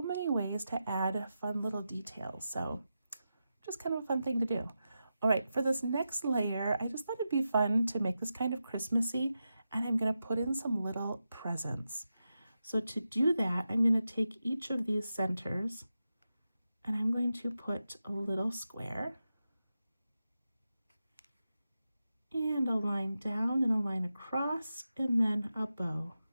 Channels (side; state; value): both; inverted; correlation -0.90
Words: many ways to add fun little details. So just kind of a fun thing to do. All right, for this next layer, I just thought it'd be fun to make this kind of Christmassy, and I'm going to put in some little presents. So to do that, I'm going to take each of these centers and I'm going to put a little square and a line down and a line across and then a bow.